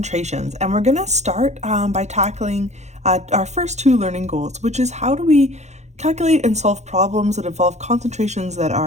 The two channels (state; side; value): late; left; 0.33 ms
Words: and we're going to start by tackling our first two learning goals, which is how do we calculate and solve problems that involve concentrations that